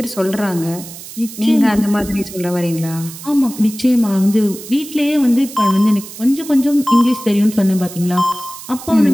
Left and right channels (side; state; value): right; noise; hiss, 14 dB below the sound